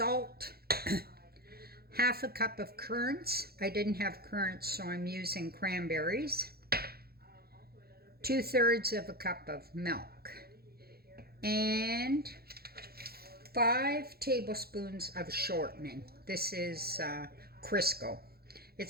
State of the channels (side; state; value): left; late; 0.45 ms